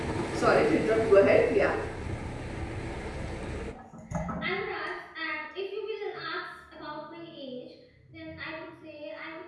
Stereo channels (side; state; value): both; identical; correlation 1.00